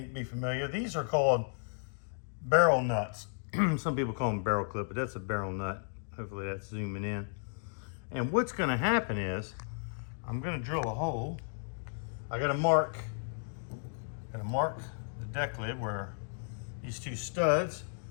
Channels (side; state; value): right; silent; digital silence